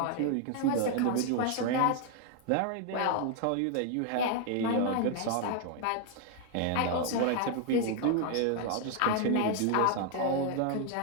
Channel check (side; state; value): both; different; correlation 0.00